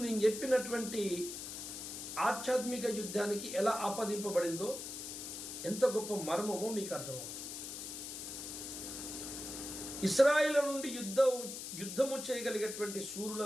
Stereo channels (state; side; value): noise; left; hiss, 7 dB below the sound